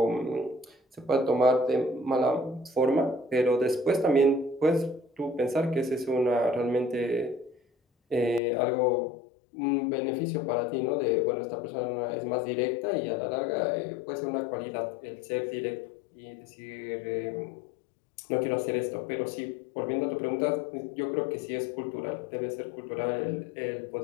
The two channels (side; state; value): right; drops out; at 8.4 s